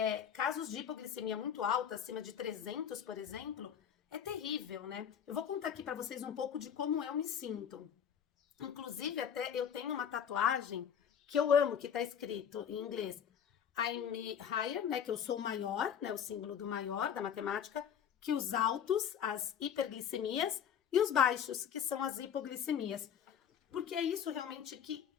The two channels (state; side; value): quieter; right; 8.4 dB